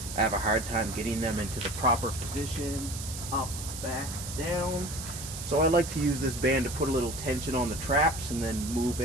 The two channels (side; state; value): right; noise; hiss, 9 dB below the sound